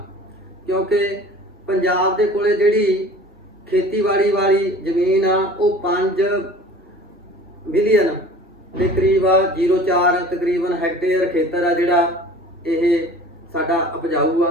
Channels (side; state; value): both; normal; correlation 0.45